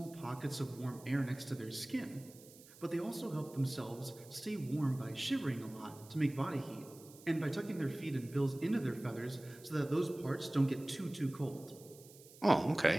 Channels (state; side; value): noise; right; hiss, 21 dB below the sound